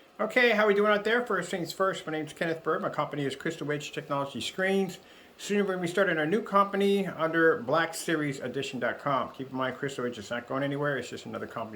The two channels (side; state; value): both; identical; correlation 1.00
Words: Okay, how are we doing out there? First things first, my name is Kenneth Bird. My company is Crystal Edge Technology Screens. Soon we're going to be starting our new company under BlackSeriesEdition.com. Keep in mind, Crystal Edge is not going anywhere. It's just another